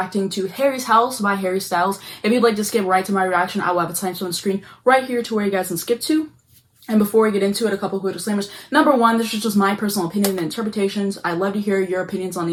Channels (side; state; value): both; identical; correlation 1.00